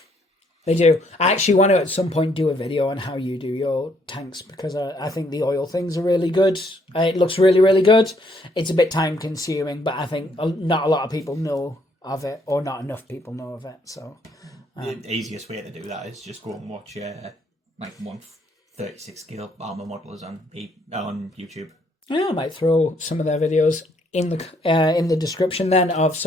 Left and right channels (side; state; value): both; normal; correlation 0.68